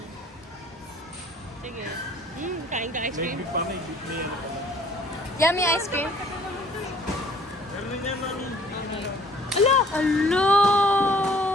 Sige. Kain ka ice May cream? big pa, may big na yan. Yummy ice cream. Meron din yan, mami. Ala! Ala!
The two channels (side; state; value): both; normal; correlation 0.56